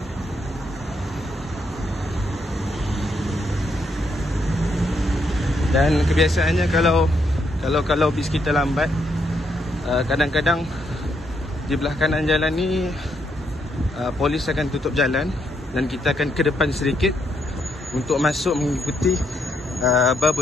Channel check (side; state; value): both; normal; correlation 0.76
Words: Dan kebiasaannya kalau bis kita lambat, kadang-kadang di belah kanan jalan ni polis akan tutup jalan dan kita akan ke depan sedikit untuk masuk mengikuti